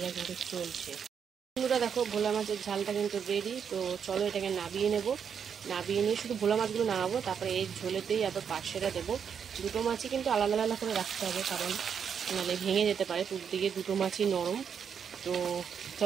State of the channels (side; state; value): left; quieter; 7.3 dB